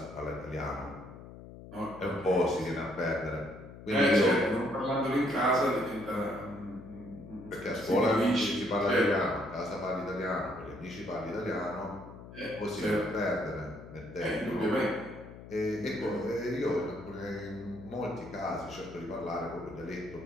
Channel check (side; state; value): left; noise; hum, 15 dB below the sound